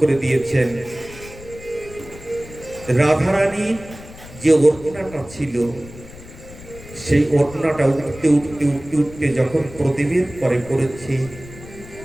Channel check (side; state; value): left; noise; rumble, 17 dB below the sound